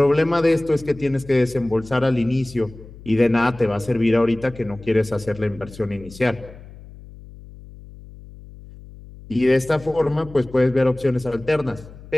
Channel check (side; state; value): left; noise; hum, 18 dB below the sound